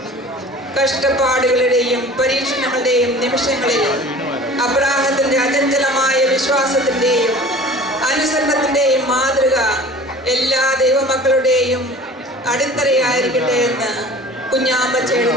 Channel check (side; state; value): both; normal; correlation 0.43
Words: കഷ്ടപ്പാടുകളുടെയും പരീക്ഷണങ്ങളുടെയും നിമിഷങ്ങളിൽ അബ്രാഹത്തിന്റെ അചഞ്ചലമായ വിശ്വാസത്തിന്റെയും അനുസരണത്തിന്റെയും മാതൃക എല്ലാ ദൈവമക്കളുടെയും അടിത്തറയായിരിക്കട്ടെ എന്ന്